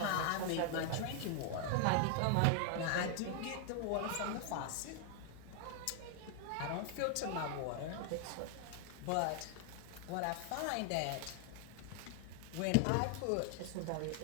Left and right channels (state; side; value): different; both; correlation 0.00